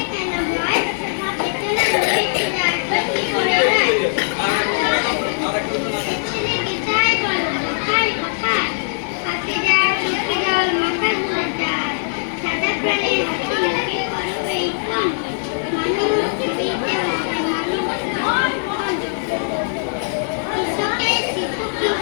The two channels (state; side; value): silent; right; digital silence